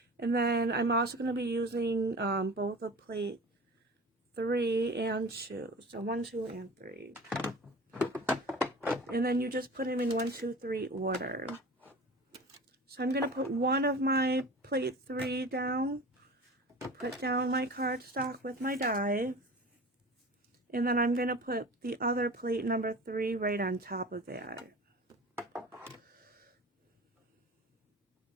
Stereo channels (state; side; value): normal; both; correlation 0.37